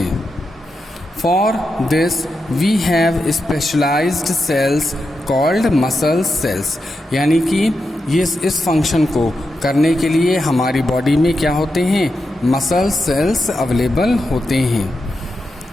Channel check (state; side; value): normal; both; correlation 0.87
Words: For this we have specialised cells called muscle cells. यानी कि ये इस फंक्शन को करने के लिए हमारी बॉडी में क्या होते हैं, मसल सेल्स अवेलेबल होते हैं.